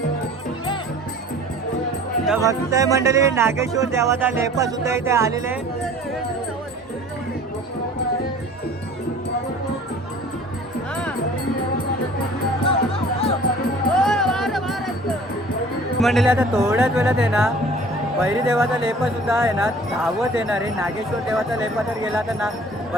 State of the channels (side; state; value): both; normal; correlation 0.48